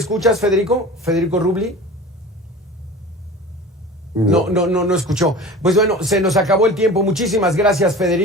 Federico? ¿Federico Rubli? No escuchó. Pues bueno, se nos acabó el tiempo. Muchísimas gracias,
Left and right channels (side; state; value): both; normal; correlation 0.37